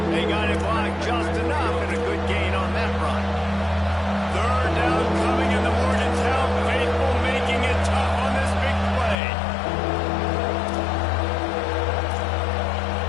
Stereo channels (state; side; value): drops out; right; at 9.2 s